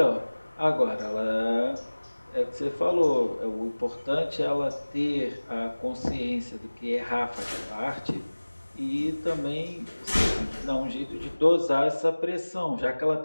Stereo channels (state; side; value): inverted; both; correlation -1.00